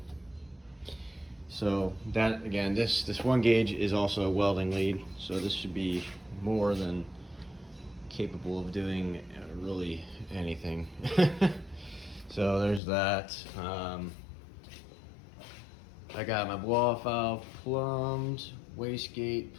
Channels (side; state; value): right; drops out; at 12.8 s